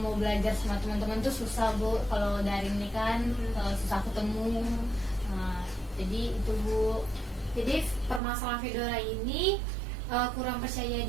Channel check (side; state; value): left; drops out; at 8.2 s